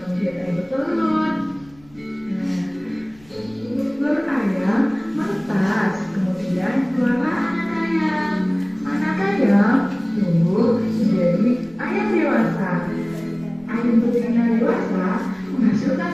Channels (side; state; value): right; noise; rumble, 27 dB below the sound